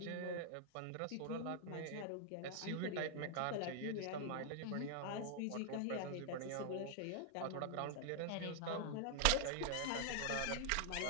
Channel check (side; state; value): both; different; correlation 0.00